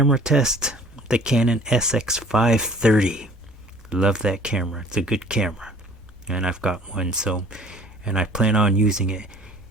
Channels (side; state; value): both; normal; correlation 0.51